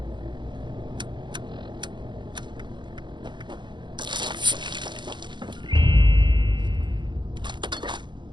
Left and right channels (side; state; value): left; late; 0.22 ms